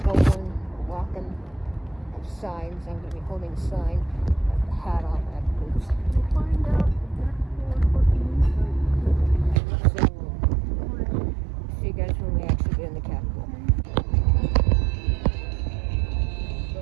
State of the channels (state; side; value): drops out; left; at 9.6 s